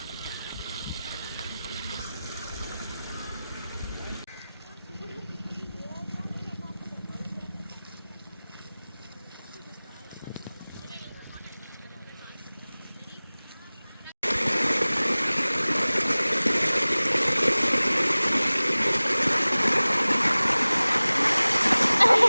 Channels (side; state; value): both; inverted; correlation -0.99